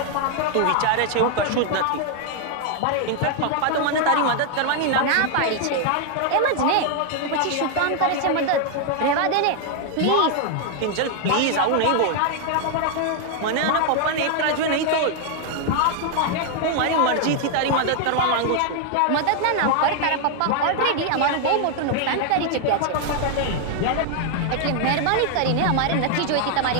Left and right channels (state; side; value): different; both; correlation 0.00